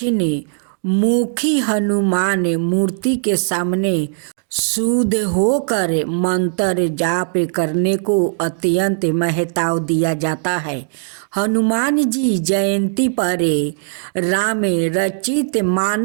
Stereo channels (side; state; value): left; silent; digital silence